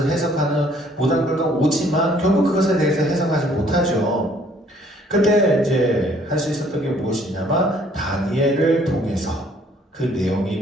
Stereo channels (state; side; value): normal; both; correlation 0.61